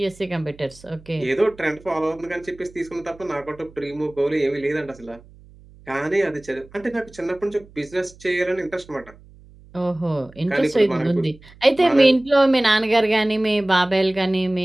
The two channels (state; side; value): noise; right; hum, 24 dB below the sound